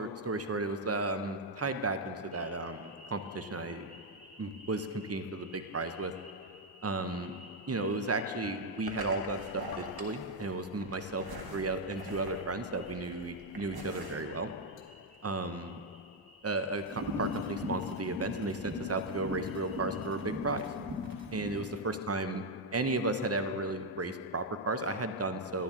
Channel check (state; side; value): normal; both; correlation 0.01